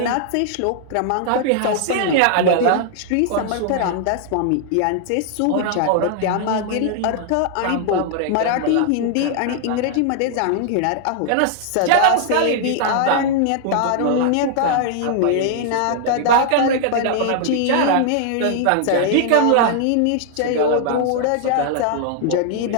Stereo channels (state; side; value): different; both; correlation -0.01